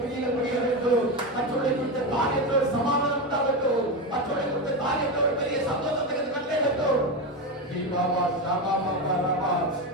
கிரியைகள் முடிய வேண்டும் மற்றவர்களை குறித்த காரியத்தோடு சமாதானம் உண்டாகட்டும் மற்றவர்களை குறித்த காரியத்தோடு பெரிய சந்தோஷத்துக்கு கண்டேகட்டும் பாபா சாபா பாபா ராபா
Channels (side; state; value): both; normal; correlation 0.15